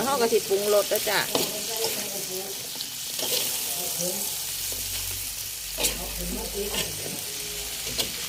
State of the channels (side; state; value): both; identical; correlation 1.00